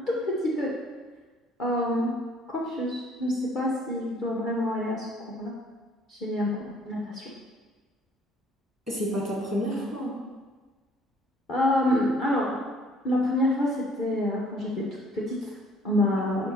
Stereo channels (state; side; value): normal; both; correlation 0.59